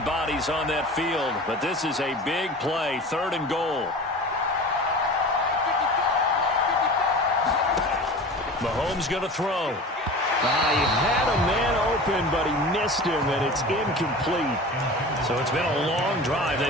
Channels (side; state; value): both; normal; correlation 0.36